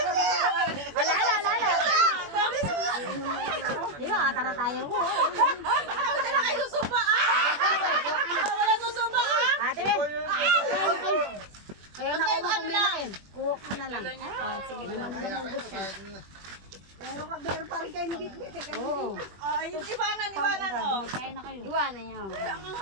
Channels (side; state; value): left; late; 21 ms